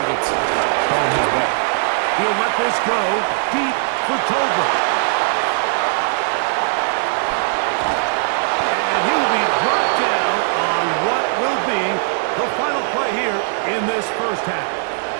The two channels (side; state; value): left; silent; digital silence